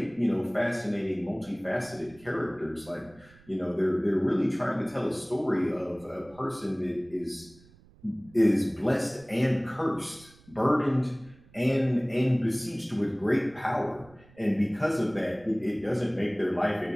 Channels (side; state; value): right; noise; rumble, 26 dB below the sound